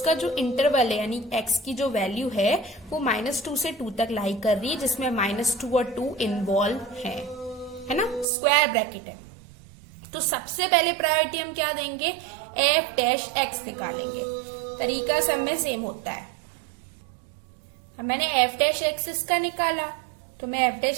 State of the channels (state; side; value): drops out; left; at 8.2 s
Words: जो इंटरवल है यानी एक्स की जो वैल्यू है वो -2 से 2 तक लाई कर रही है, जिसमें -2 और 2 इन्वॉल्व है ना, स्क्वायर ब्रैकेट है। तो सबसे पहले प्रायोरिटी हम क्या देंगे, एफ डैश एक्स निकालेंगे। तरीका सब में सेम होता है। मैंने एफ डैश एक्स इसका निकाला, तो मैं एफ